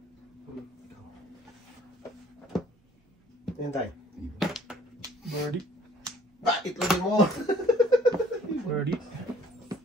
Ayan tayo. Birdie. Bakit lagi mo? Birdie.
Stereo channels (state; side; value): normal; both; correlation 0.56